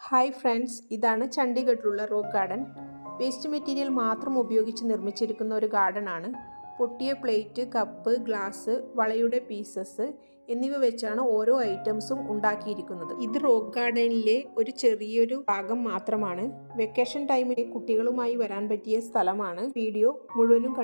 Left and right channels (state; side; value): inverted; both; correlation -1.00